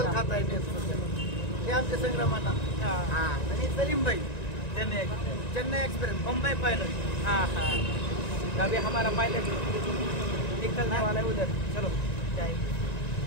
खाता येते हे आमच्या संग्रामाला. आणि सलीम भाई चेन्नई एक्सप्रेस मुंबई पायलट. हाँ हाँ, अभी हमारा पायलट निकलने वाला है उधर. चलो जाएंगे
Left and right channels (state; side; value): late; right; 1.9 ms